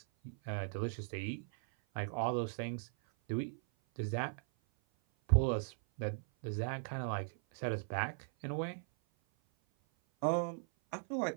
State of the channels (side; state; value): left; silent; 52 dB below the other